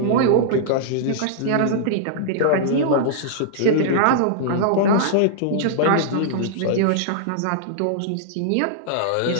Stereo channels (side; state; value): both; different; correlation -0.02